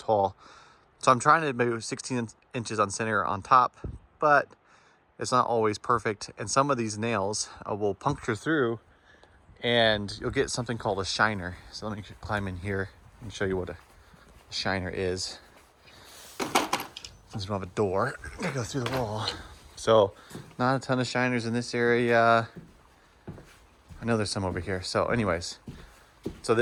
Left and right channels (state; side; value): identical; both; correlation 1.00